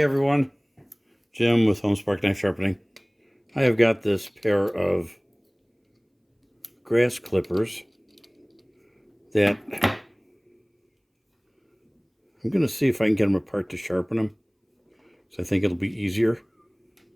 everyone, Jim with Homespark Knife Sharpening. I have got this pair of grass clippers that I'm going to see if I can get them apart to sharpen them. So I think it'll be easier.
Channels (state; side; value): identical; both; correlation 1.00